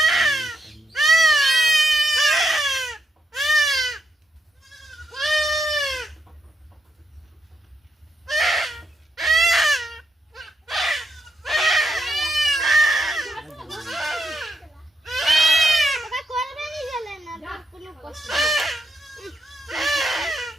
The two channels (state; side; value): normal; both; correlation 0.81